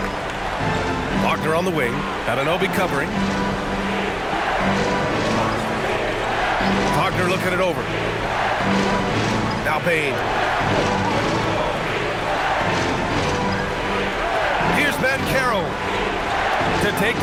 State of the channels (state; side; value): identical; both; correlation 1.00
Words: Wagner on the wing. Anunoby covering. Wagner looking it over. Now Bane. Here's Banchero to take